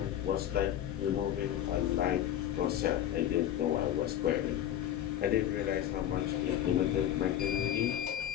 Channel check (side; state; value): right; quieter; 11.3 dB